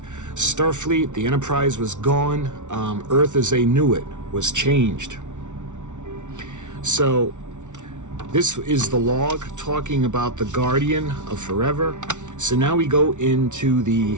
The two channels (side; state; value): left; late; 0.86 ms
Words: Starfleet, the Enterprise, was gone. Earth as they knew it was changed. So this is the log talking about the Guardian of Forever. So now we go into